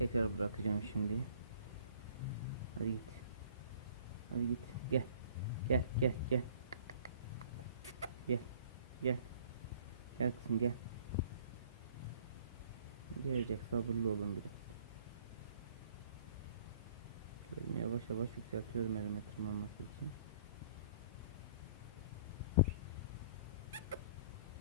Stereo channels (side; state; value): both; inverted; correlation -0.53